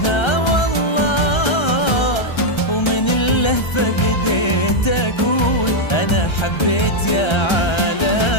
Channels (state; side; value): late; right; 1.3 ms